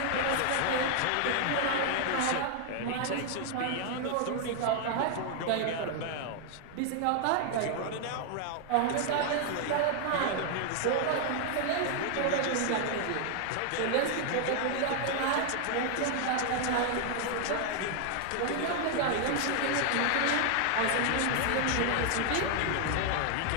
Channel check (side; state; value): both; different; correlation 0.00